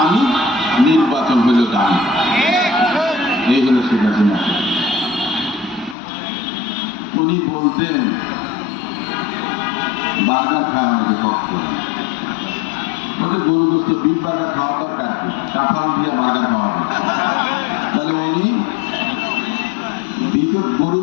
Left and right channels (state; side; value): drops out; right; at 6.0 s